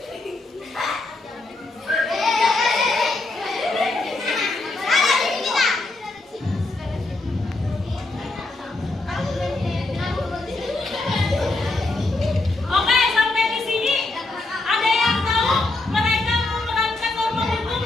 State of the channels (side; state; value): right; quieter; 3.1 dB